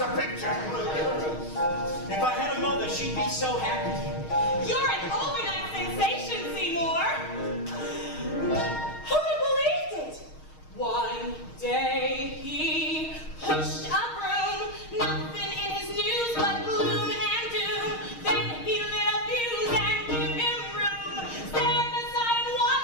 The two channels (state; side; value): late; right; 6.4 ms